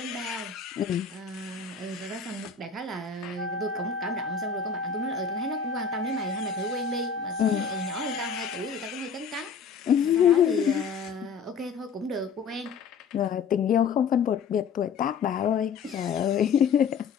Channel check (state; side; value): quieter; right; 6.2 dB